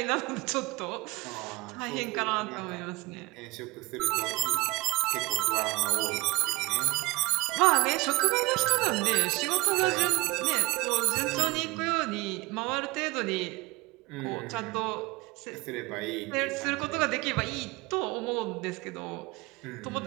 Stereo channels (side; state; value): left; quieter; 22.2 dB